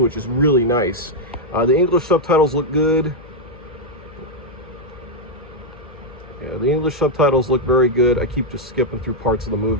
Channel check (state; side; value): noise; left; hum, 21 dB below the sound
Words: is really nice. The English subtitles look good. Yeah, the English subtitles look very good. I keep just skipping through parts of the